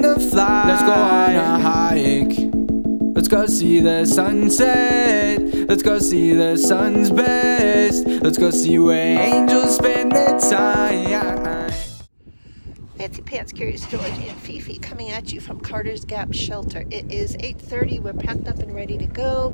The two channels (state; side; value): inverted; both; correlation -1.00